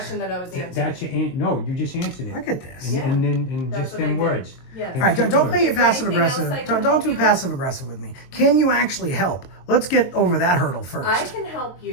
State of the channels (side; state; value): right; late; 22 ms